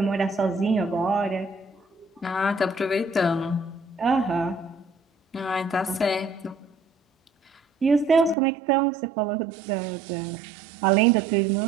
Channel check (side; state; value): left; drops out; at 8.3 s